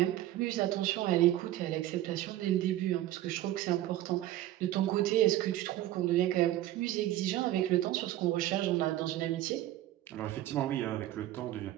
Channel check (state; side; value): quieter; left; 14.2 dB